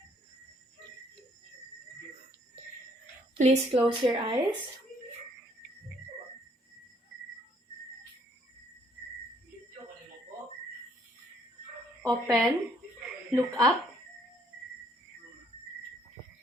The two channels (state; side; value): normal; both; correlation 0.65